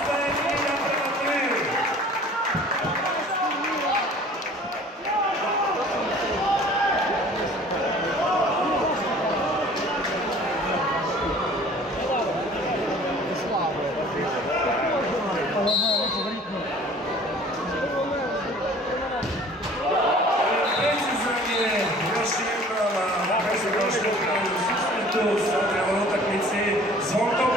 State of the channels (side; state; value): both; normal; correlation 0.49